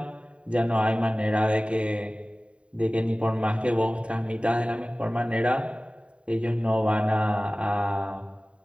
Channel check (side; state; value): left; late; 0.060 ms